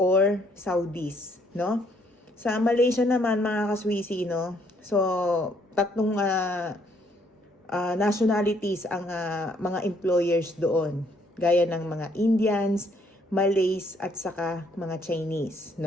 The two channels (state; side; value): normal; both; correlation 0.67